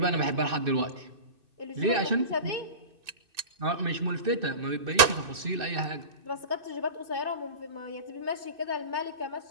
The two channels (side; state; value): left; late; 2.6 ms